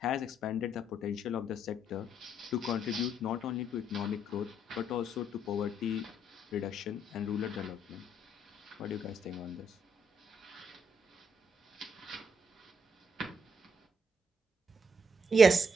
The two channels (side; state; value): both; normal; correlation 0.73